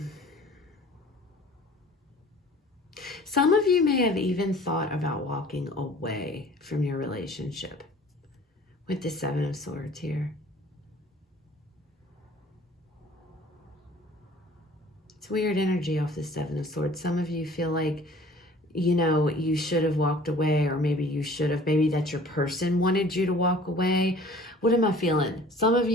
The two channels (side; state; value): both; normal; correlation 0.49